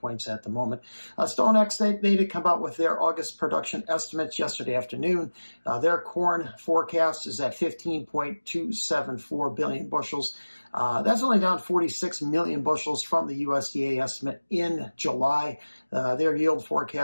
at the moment. StoneX, they did come out with their August production estimates yesterday afternoon. Their corn forecast is at 15.274 billion bushels. That's only down 46 million bushels from the USDA estimate in July. Their yield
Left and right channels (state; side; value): inverted; both; correlation -1.00